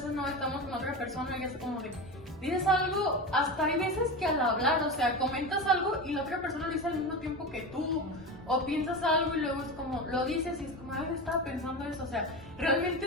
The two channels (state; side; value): normal; both; correlation 0.23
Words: no estamos con otra persona y es como de, dices algo, hasta hay veces que al hablar, o sea, comentas algo y la otra persona lo dice al mismo tiempo que tú, o piensas algo y luego es como, lo dices y es como, ay, yo estaba pensando eso, o sea, realmente